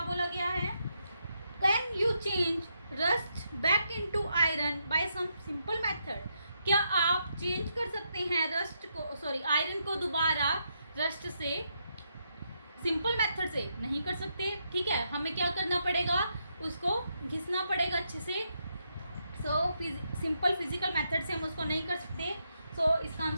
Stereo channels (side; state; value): both; inverted; correlation -0.80